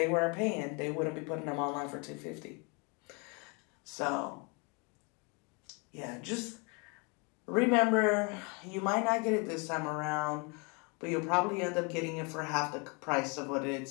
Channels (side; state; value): right; quieter; 32.0 dB